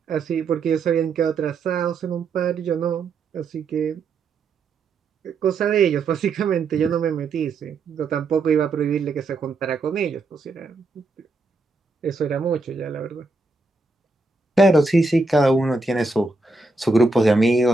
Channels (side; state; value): left; quieter; 3.6 dB